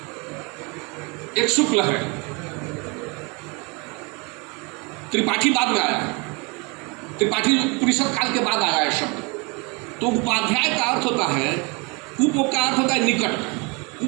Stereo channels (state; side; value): quieter; left; 29.7 dB